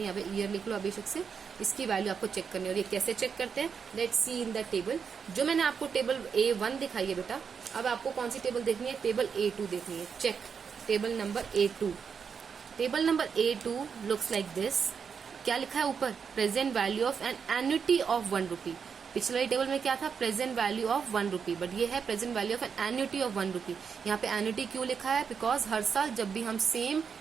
यहाँ पे ईयर लिख लो अभिषेक से, इसकी वैल्यू आपको चेक करनी है। और ये कैसे चेक करते हैं, let's see in the table. जो मैंने आपको टेबल A1 दिखाई है बेटा, अब आपको कौन सी टेबल देखनी है, टेबल A2 देखनी है। Check table number A2। Table number A2 looks like this. क्या लिखा है ऊपर, present value of an annuity of 1 rupee। पिछले वाली टेबल में क्या था, present value of 1 rupee, but ये है present value of an annuity of 1 rupee। यहाँ पे एन्युटी क्यों लिखा है, बिकॉज हर साल जब भी हम सेम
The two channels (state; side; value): quieter; left; 6.4 dB